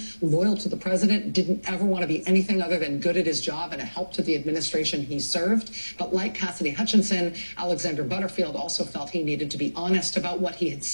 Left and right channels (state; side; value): inverted; both; correlation -1.00